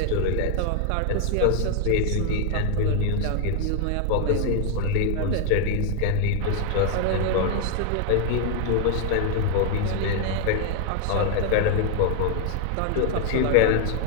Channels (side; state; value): both; different; correlation 0.00